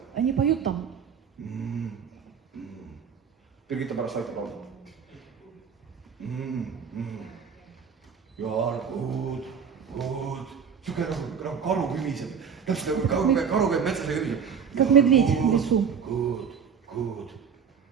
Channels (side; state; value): left; quieter; 6.8 dB